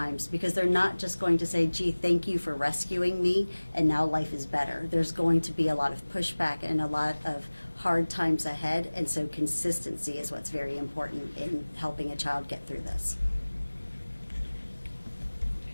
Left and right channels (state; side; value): inverted; both; correlation -1.00